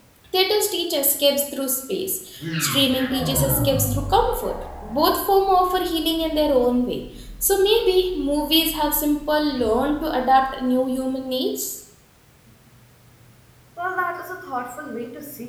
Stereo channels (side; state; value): both; identical; correlation 1.00